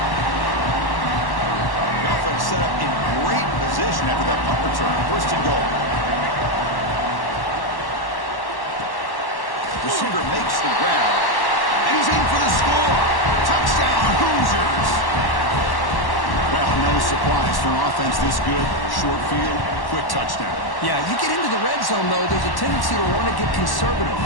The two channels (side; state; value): right; late; 1.1 ms